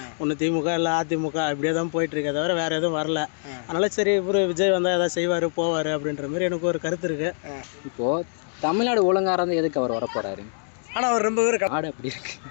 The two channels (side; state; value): right; silent; digital silence